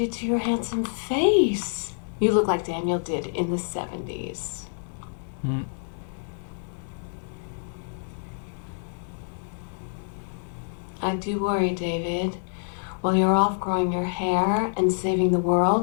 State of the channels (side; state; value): right; silent; digital silence